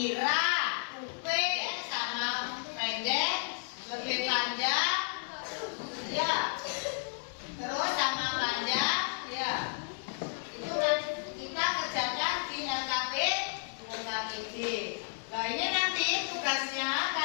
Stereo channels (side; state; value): right; silent; 55 dB below the other